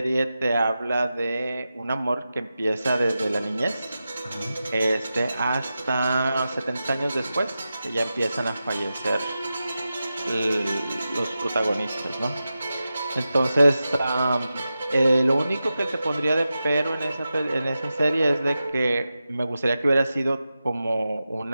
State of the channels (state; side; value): inverted; both; correlation -0.92